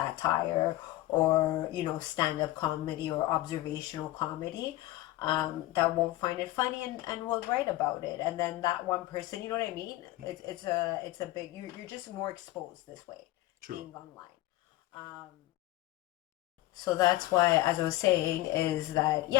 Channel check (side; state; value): right; quieter; 16.8 dB